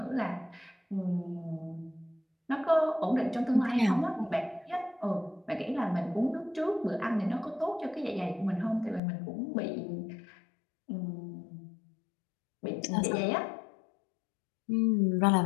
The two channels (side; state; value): right; drops out; at 9.0 s